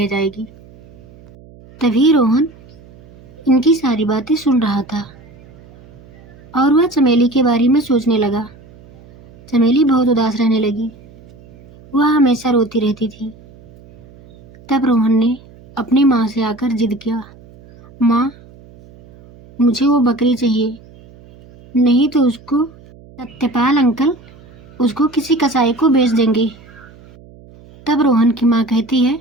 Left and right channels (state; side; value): noise; right; hum, 24 dB below the sound